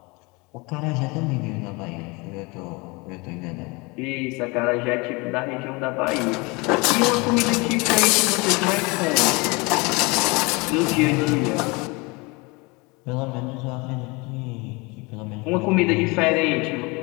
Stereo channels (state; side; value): quieter; right; 26.7 dB